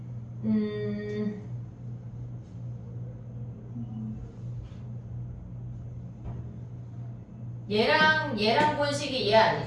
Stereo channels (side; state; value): both; identical; correlation 1.00